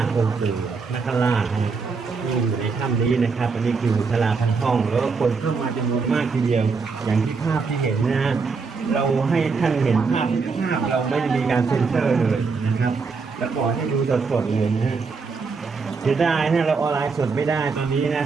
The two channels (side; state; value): left; quieter; 4.8 dB